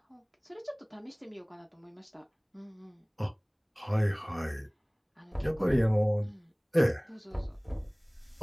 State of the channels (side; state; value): both; identical; correlation 1.00